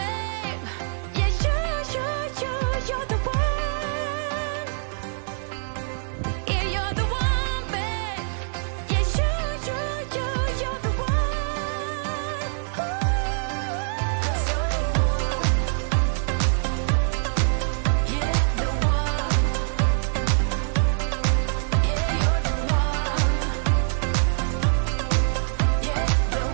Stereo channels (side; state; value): left; silent; digital silence